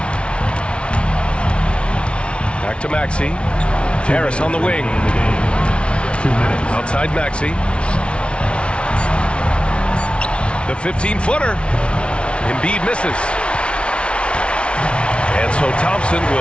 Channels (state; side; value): late; right; 0.059 ms